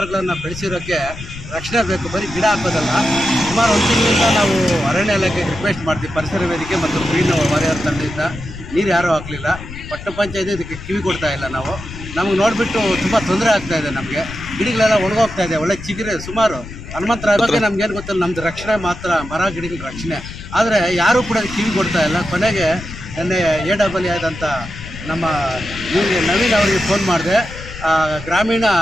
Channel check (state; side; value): noise; left; rumble, 12 dB below the sound